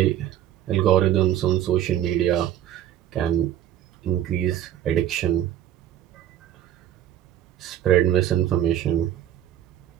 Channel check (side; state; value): left; quieter; 11.4 dB